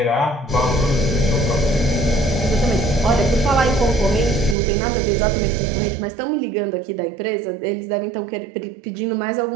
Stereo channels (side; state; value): left; drops out; at 4.5 s